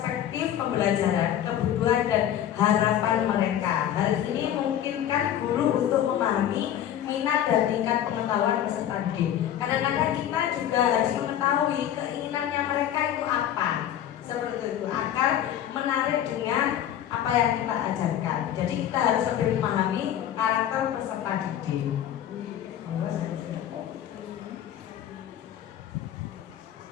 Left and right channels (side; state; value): right; quieter; 10.9 dB